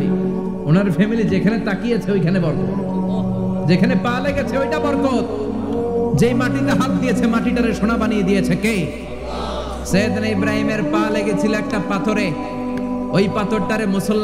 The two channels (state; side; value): identical; both; correlation 1.00